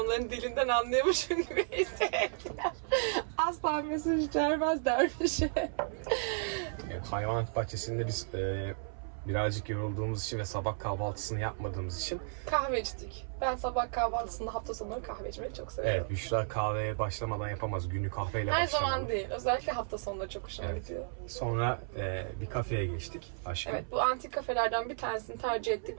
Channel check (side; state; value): left; silent; 55 dB below the other